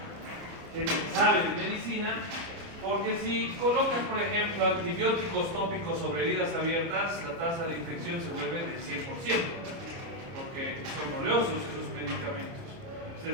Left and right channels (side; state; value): left; late; 30 ms